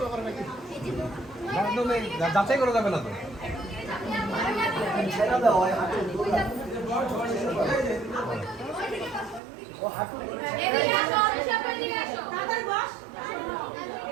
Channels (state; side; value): drops out; left; at 9.4 s